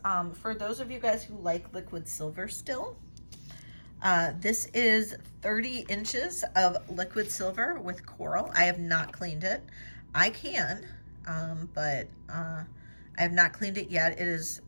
for those of you guys who like liquid silver still, this is 30 inches of liquid silver with coral. I have not cleaned it. I can, but I have not cleaned it yet. It is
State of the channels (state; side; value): inverted; both; correlation -1.00